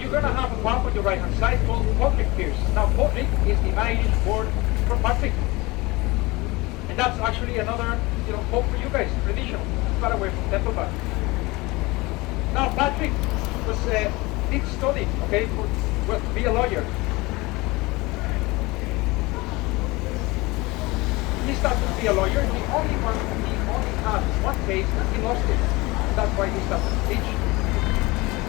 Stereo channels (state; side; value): quieter; right; 22.8 dB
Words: going to have a pub on your right-hand side called Patrick Pierce. Now, Patrick is the Irish word for Patrick. And that's actually another, hope for you guys, traditional, far away from Templebar. Now, Patrick did study, okay, to be a lawyer. He started to be a lawyer. He only had one case and he lost it. And that's why he started to teach.